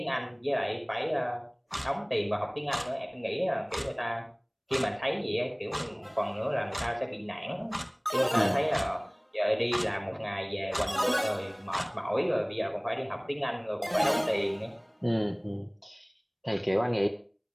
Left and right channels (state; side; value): identical; both; correlation 1.00